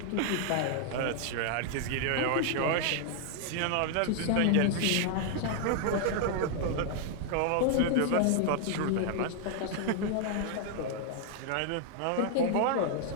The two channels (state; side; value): different; both; correlation 0.00